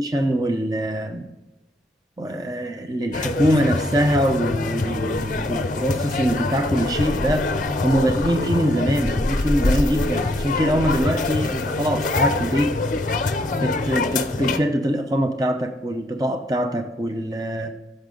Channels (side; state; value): both; normal; correlation 0.72